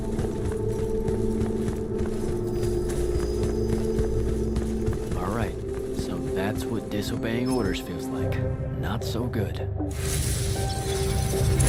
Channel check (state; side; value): identical; both; correlation 1.00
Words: That's what disobeying orders feels like. Not so good.